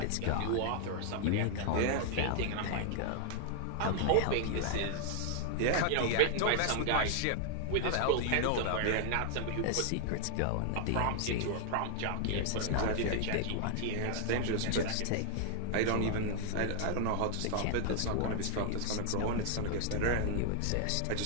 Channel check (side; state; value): both; different; correlation 0.00